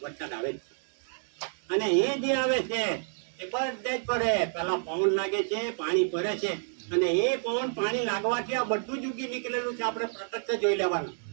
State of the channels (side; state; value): left; silent; digital silence